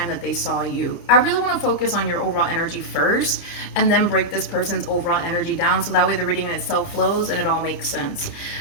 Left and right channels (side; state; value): right; late; 29 ms